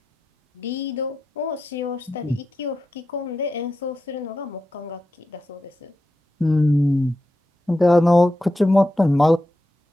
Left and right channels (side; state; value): both; normal; correlation 0.89